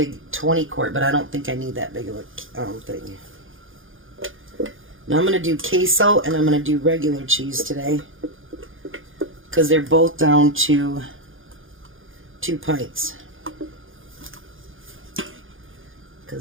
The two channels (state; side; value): late; left; 0.58 ms